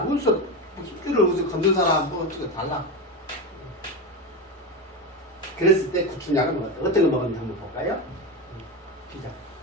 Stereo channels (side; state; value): both; normal; correlation 0.18